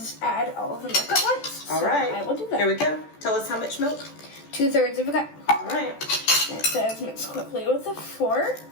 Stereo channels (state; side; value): late; right; 14 ms